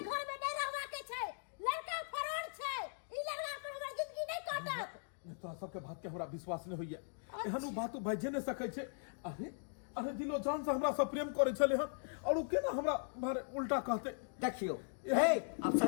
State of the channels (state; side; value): silent; right; digital silence